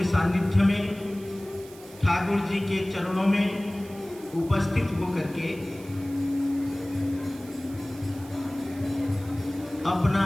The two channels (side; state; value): right; noise; hiss, 21 dB below the sound